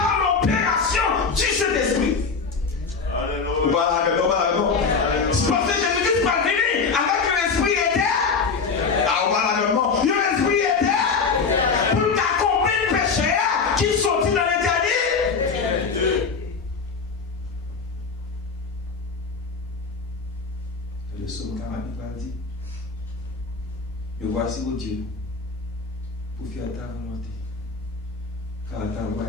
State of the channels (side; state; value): right; quieter; 5.0 dB